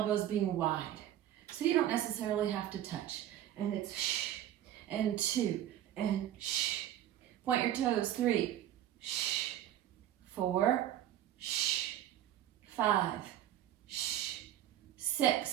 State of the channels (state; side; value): quieter; left; 12.0 dB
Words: being wide, so you don't necessarily have to touch. And it's and 2, and point your toes. 3, 4, 5,